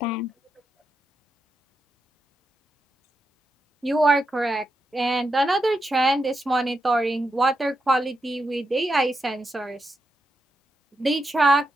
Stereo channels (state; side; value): normal; both; correlation 0.85